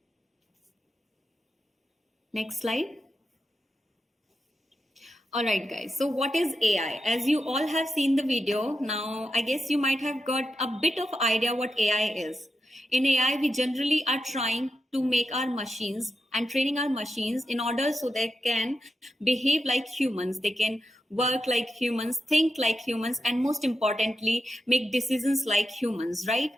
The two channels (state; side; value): normal; both; correlation 0.88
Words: Next slide. All right, guys. So, what is AI? As you all have seen the video, now I guess you might have got a bit of idea what AI is. In AI, we generally are trying to make our machines and training our machines in order so they can behave like humans, they can work like humans, think like humans, and most importantly, make decisions like humans, right?